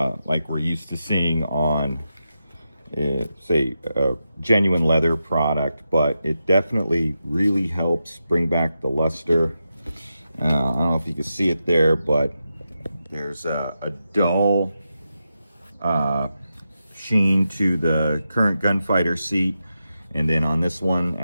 we're used to seeing on, say, a genuine leather product. But it definitely really helps bring back the luster. I don't know if you can see it there, but there's a dull sheen to the current gunfighter seat, and then on this one,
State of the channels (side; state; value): both; inverted; correlation -0.88